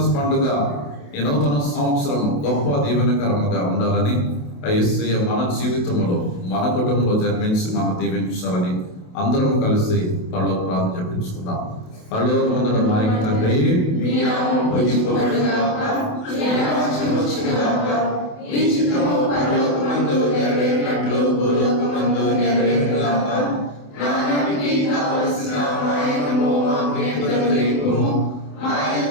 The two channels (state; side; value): late; right; 28 ms